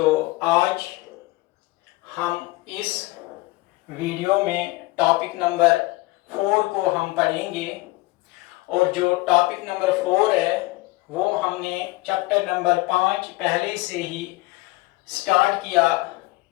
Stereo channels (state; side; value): quieter; right; 21.1 dB